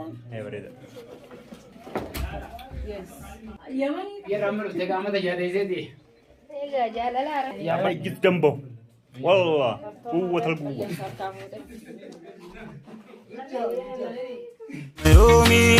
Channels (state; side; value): identical; both; correlation 1.00